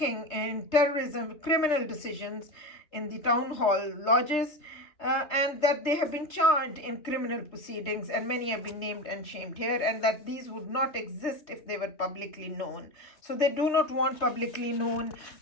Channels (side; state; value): right; late; 3.3 ms